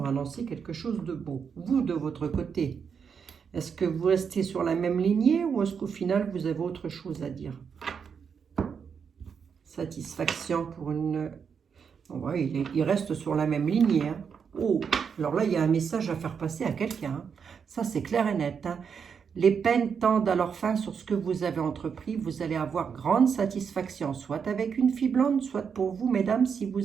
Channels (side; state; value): left; quieter; 6.6 dB